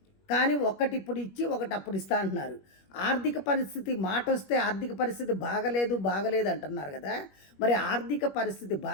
కానీ ఒకటి ఇప్పుడు ఇచ్చి ఒకటి అప్పుడు ఇస్తా అంటున్నారు. ఆర్థిక పరిస్థితి మాట వస్తే ఆర్థిక పరిస్థితి బాగలేదు అంటున్నారు కదా. మరి ఆర్థిక పరిస్థితి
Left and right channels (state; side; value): late; right; 21 ms